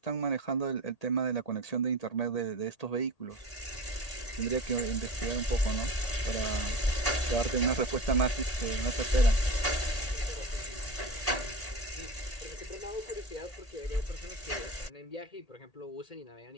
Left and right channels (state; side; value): late; right; 1.8 ms